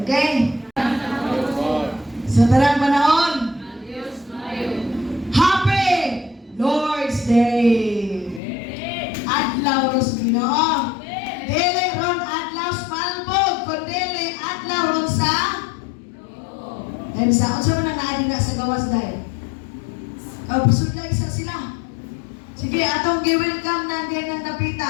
Okay? Sa tarang panahon, Happy Lord's Day! Adlaw ros Ginoo. Dili ron adlaw sa palbog, kundi adlaw ron sa sa unsa man naadi na sa gawas dai. Pasudlay isa sila. Sige, atong gi-welcome na din ang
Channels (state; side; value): drops out; right; at 8.4 s